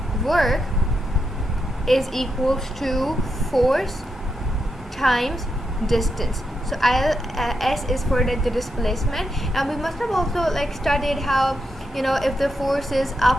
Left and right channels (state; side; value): normal; both; correlation 0.84